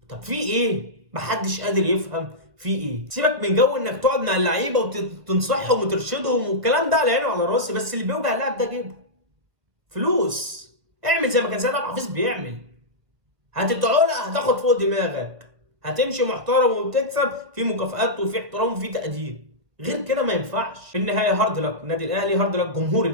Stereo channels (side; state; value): left; late; 1.4 ms